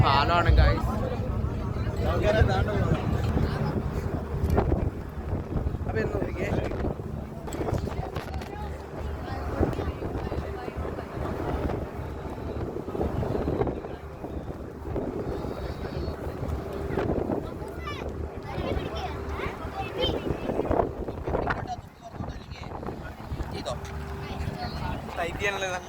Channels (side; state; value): both; identical; correlation 1.00